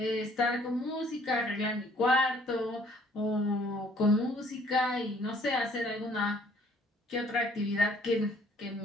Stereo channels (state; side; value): normal; both; correlation 0.60